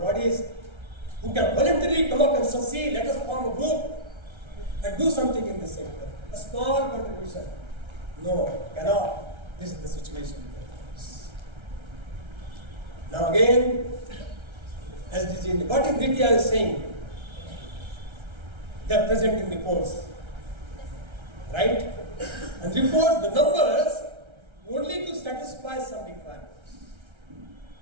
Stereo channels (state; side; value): late; left; 1.3 ms